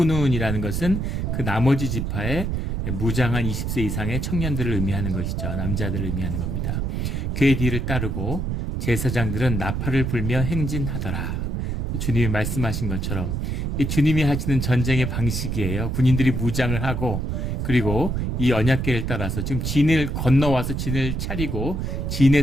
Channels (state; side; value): noise; right; rumble, 1 dB below the sound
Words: 것은 그 나머지 지파의 무장한 20세 이상의 청년들을 의미하는 것이죠. 남자들을 의미하는 겁니다. 그의 뒤를 따르고 제사장들은 나팔을 불며 행진하더라. 주님이 말씀하신 것처럼 이 주님이 하시는 전쟁의 방식이에요. 군인들이 무장을 하고, 그리고 이 언약궤를 따라서 지금 진을 건너와서 진을 차리고